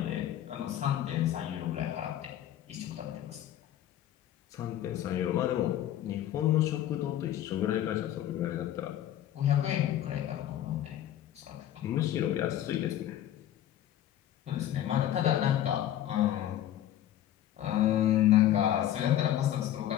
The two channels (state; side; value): quieter; right; 12.0 dB